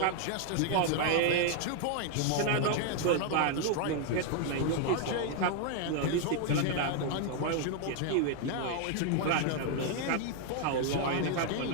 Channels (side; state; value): both; different; correlation 0.00